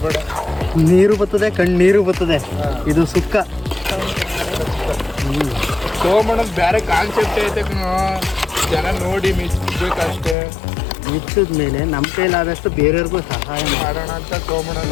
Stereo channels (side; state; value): right; drops out; at 10.4 s